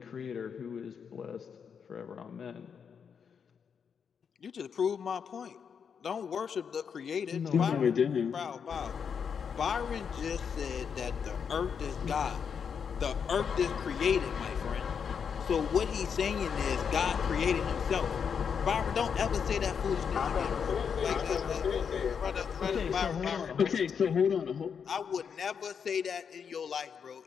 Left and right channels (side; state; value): right; quieter; 6.8 dB